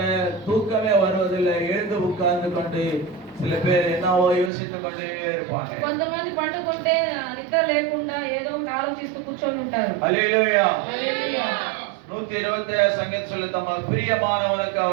தூக்கமே வருவதில்லை. எழுந்து உட்கார்ந்து கொண்டு சில பேர் என்னவோ யோசித்துக் கொண்டே இருப்பாங்க. కొంతమంది పండుకుంటే నిద్ర లేకుండా ఏదో ఒకటి ఆలోచిస్తూ కూర్చొని ఉంటారు. ஹalleluya. హల్లెలూయా. 127 சங்கீதம் சொல்லு, தமக்கு பிரியமானவனுக்கு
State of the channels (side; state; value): left; drops out; at 4.5 s